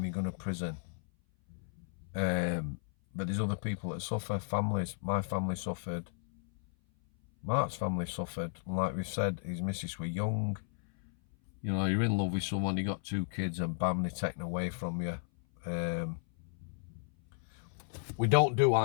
you're going to prison. But there's other people that suffer, families. My family suffered. Mark's family suffered. And like we've said, his missus were young. You know, you're in love with someone, you got 2 kids, and bam, they're taken away from you. We don't do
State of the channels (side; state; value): right; silent; 55 dB below the other